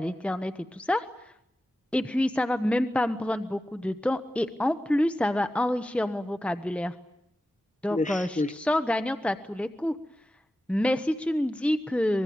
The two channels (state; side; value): normal; both; correlation 0.94